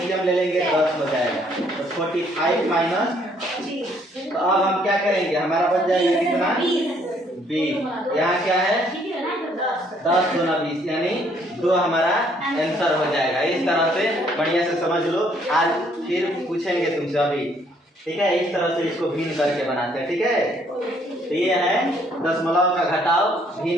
ले लेंगे 10 हो जाएगा, तो 45 माइनस। तो अब हम क्या करेंगे, हमारा बच जाएगा कितना? 20। यहाँ क्या है 10 दूना 20 यानी 2 हमारा आंसर हो जाएगा। इस तरह से बढ़िया से समझ लो। आज फिर पूछेंगे तुमसे अभी, ठीक है? इस तरह से इसको भिन्न करके बनाते हैं, ठीक है? तो ये है दशमलव का घटाव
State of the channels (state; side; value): normal; both; correlation 0.66